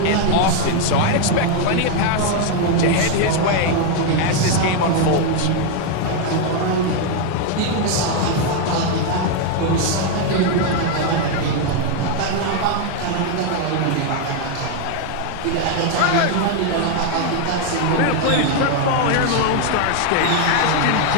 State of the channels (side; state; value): both; different; correlation 0.01